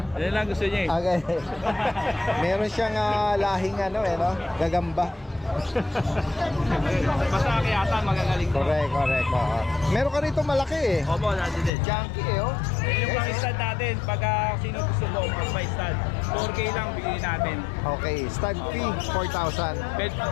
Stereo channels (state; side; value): drops out; right; at 11.7 s